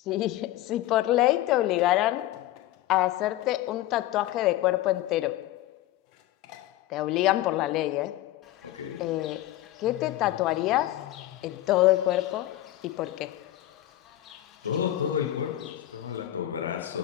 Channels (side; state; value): right; quieter; 14.6 dB